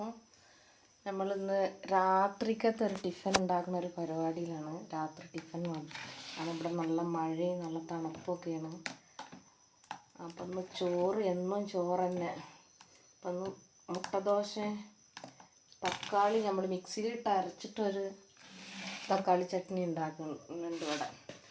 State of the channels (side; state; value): both; identical; correlation 1.00